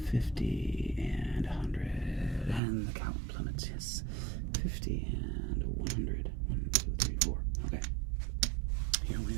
50 and 100. And the count plummets. Yes. 50 and 100. 1, 2, 3, 4. Okay. Here we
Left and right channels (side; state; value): left; drops out; at 2.6 s